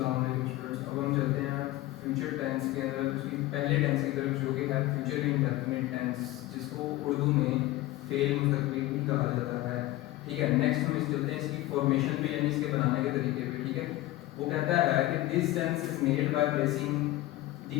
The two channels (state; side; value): quieter; right; 16.8 dB